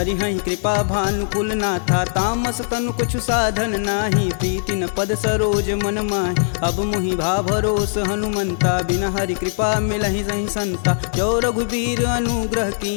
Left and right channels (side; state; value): right; silent; digital silence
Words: हई कृपा भानुकुल नाथा। तामस तनु कुछ साधन नाही, प्रीति न पद सरोज मन माहि। अब मुहि भा भरोस हनुमंता, बिना हरि कृपा मिलहि सही संता। जो रघुबीर अनुग्रह